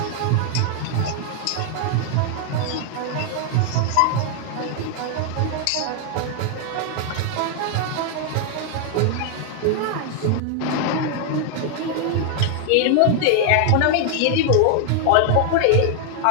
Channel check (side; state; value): both; different; correlation 0.00